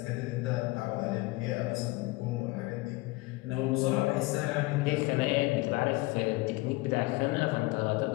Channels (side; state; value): right; quieter; 22.2 dB